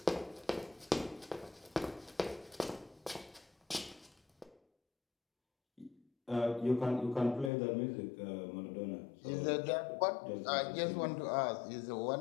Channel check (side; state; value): right; drops out; at 7.5 s